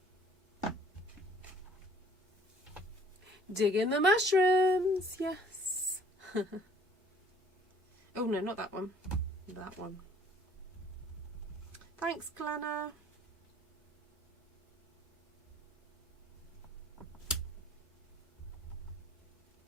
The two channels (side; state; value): both; normal; correlation 0.56